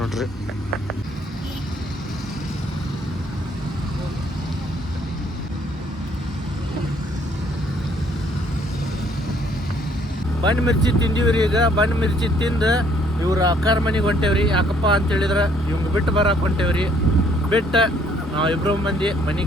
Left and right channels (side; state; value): both; normal; correlation 0.63